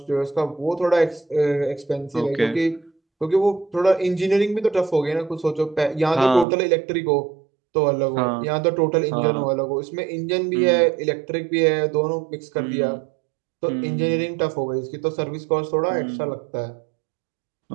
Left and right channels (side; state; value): left; drops out; at 6.5 s